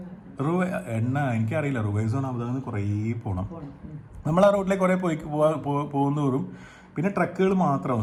എണ്ണ എനിക്കറിയില്ല, റുവൈസോൺ അബുദാബിയിൽ നിന്ന് കുറേ പോകണം. നമ്മൾ ആ റോഡിലേക്ക് കുറേ പോകുന്നതോറും പിന്നെ ട്രക്കുകൾ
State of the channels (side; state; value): both; identical; correlation 1.00